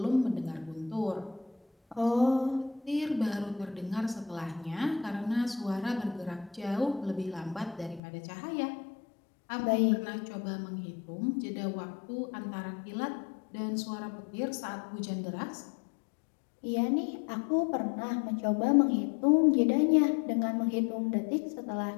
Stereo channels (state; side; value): drops out; right; at 8.0 s